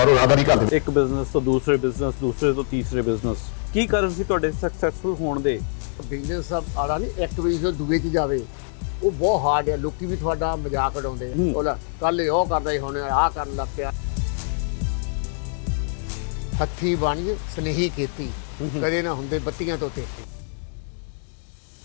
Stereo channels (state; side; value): silent; right; digital silence